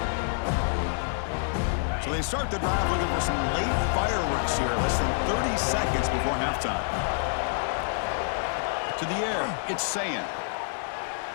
So they start the drive looking for some late fireworks here, less than 30 seconds before halftime. To the air, it's Sayin.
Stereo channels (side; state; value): right; silent; 60 dB below the other